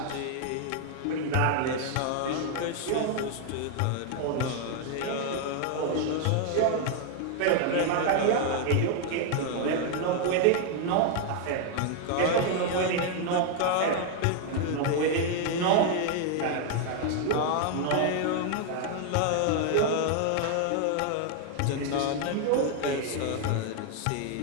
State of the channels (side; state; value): both; different; correlation 0.00